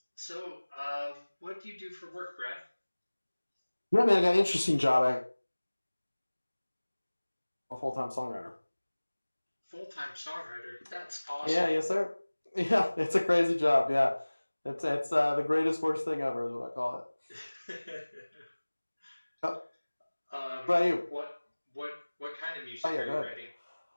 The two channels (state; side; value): inverted; both; correlation -1.00